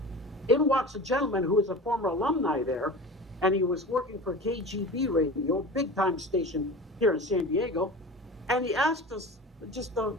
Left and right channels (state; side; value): normal; both; correlation 0.34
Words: in walks a gentleman who was a former alumni there, and he was working for KGB Radio, big-time station here in San Diego, and he asked us, just the